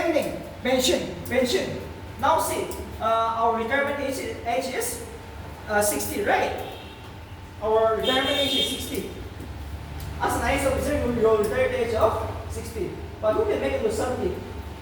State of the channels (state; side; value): identical; both; correlation 1.00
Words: thing. Pension. Now see, our retirement age is 60, right? Our retirement age is 60. As an IAS officer, you will retire at the age of 60. But who can make it to 70?